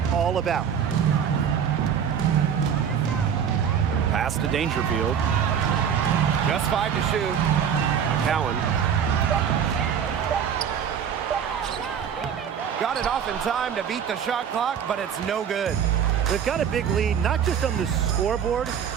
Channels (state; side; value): quieter; left; 8.0 dB